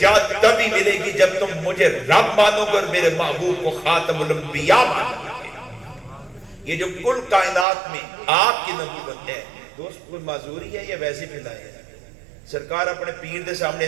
تبھی ملے گی جب تم مجھے رب مانو گے اور میرے محبوب کو خاتم الانبیاء مانو گے. یہ جو کل کائنات میں آپ کی نبوت ہے دوست, کوئی معذوری ہے یا ویسے پھیلائے ہیں؟ سرکار اپنے پیر دے سامنے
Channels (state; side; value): drops out; left; at 7.7 s